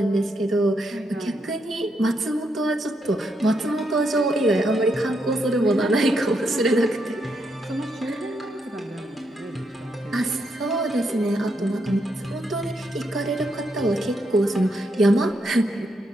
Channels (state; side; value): normal; both; correlation 0.79